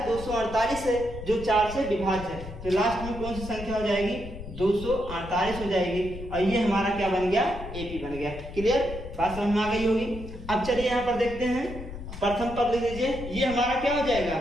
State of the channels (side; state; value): left; noise; rumble, 11 dB below the sound